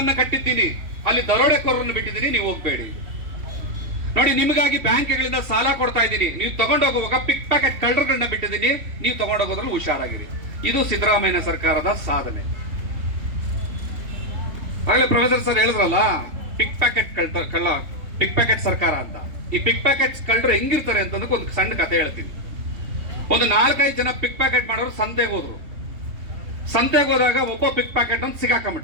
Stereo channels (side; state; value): left; late; 3.2 ms